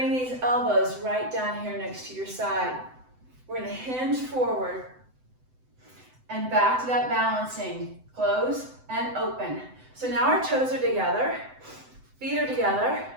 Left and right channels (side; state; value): left; late; 7.9 ms